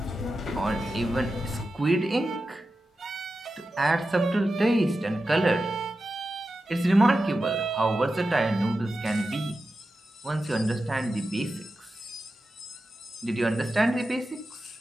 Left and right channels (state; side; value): normal; both; correlation 0.92